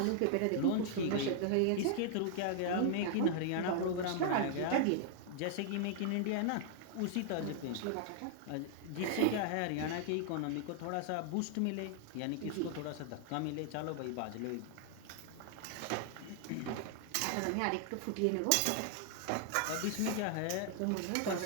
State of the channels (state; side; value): different; both; correlation -0.01